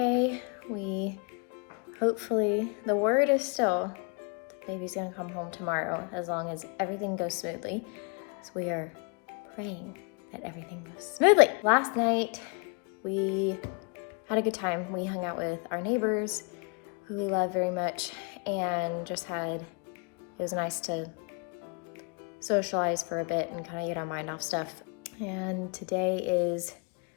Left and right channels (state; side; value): quieter; right; 36.0 dB